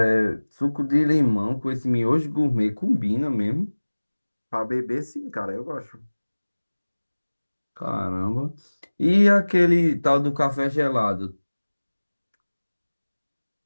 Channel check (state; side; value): inverted; both; correlation -1.00